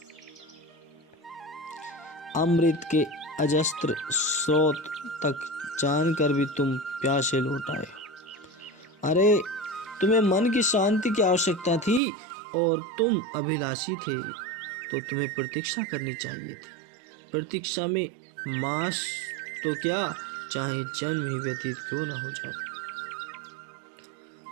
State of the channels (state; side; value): drops out; left; at 12.0 s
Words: अमृत के अजस्त्र स्रोत तक जानकर भी तुम प्यासे लौट आए हो। अरे, तुम्हें मन की शांति की आवश्यकता थी और तुम अभिलाषी थे, तो तुम्हें प्रतीक्षा करनी चाहिए थी। प्रतीक्षा में मास तो क्या, चाहे जन्म ही व्यतीत क्यों न हो जाए।